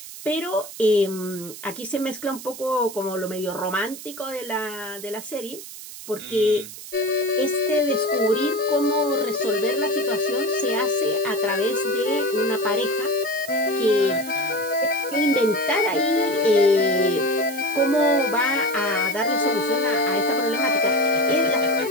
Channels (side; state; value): right; noise; hiss, 13 dB below the sound